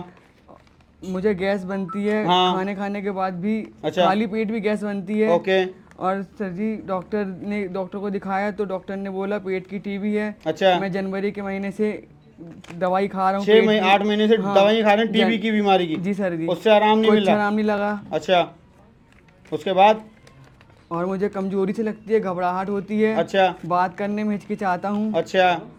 मुझे गैस बनती है, हाँ। खाने के बाद भी। अच्छा। खाली पेट भी गैस बनती है। ओके। और सर जी डॉक्टर को दिखाया तो डॉक्टर ने बोला पेट की टीबी है। अच्छा। मैं जनवरी के महीने से दवाई खा रहा हूँ 8 महीने से हाँ, दवाई खा रहे हैं टीबी की बीमारी की? जी सर जी। उससे आराम नहीं मिल कुछ रहा? आराम नहीं लगा। अच्छा, उसके बाद? और मुझे कमजोरी से लगती है, घबराहट होती है। अच्छा। बात करने में हिचकिचाता हूँ। अच्छा।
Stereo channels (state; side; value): identical; both; correlation 1.00